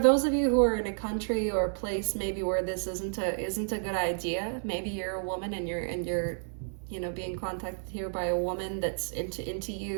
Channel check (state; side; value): silent; left; 57 dB below the other